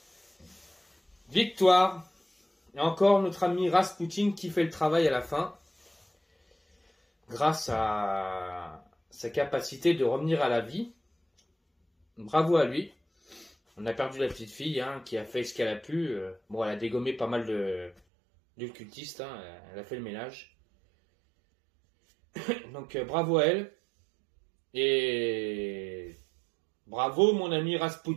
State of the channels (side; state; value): left; drops out; at 17.9 s